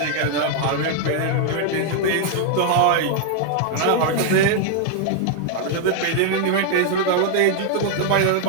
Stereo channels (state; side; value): different; both; correlation 0.00